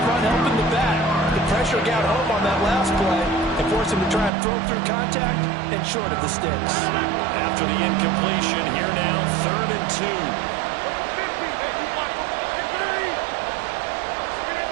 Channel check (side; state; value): left; drops out; at 4.3 s